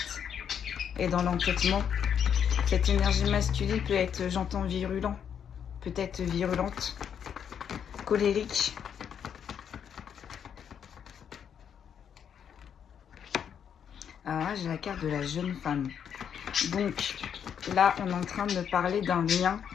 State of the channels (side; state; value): right; quieter; 8.2 dB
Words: et dans l'entêtement. Cette énergie masculine peut être, j'entends, virulent, peut-être virulente, colérique. Alors là, j'ai la carte de la jeune femme. Donc là, on est en train de me parler d'un lien